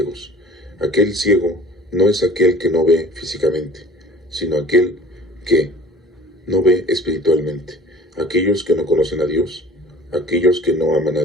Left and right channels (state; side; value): normal; both; correlation 0.46